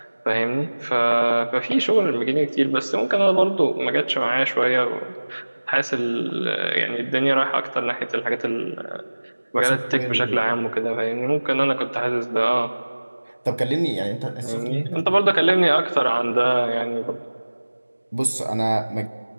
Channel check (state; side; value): inverted; both; correlation -1.00